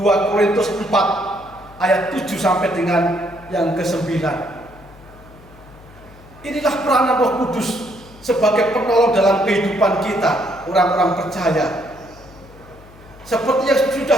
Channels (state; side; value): noise; left; hum, 22 dB below the sound